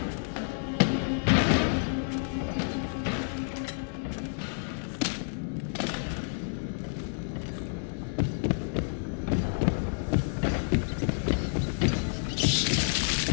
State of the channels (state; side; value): silent; right; digital silence